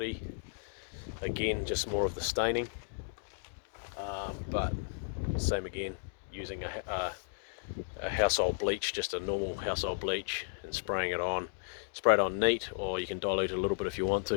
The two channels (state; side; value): silent; right; digital silence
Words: Again, just more of the staining, but same again, using a household bleach, just a normal household bleach, and spraying it on. Spray it on neat, or you can dilute it a little bit if you want